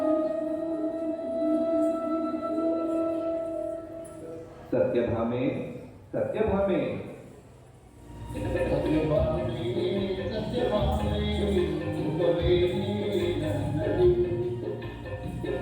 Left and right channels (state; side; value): identical; both; correlation 1.00